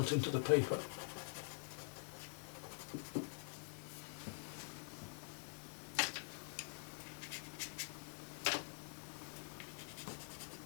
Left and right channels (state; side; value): silent; right; digital silence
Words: into the paper.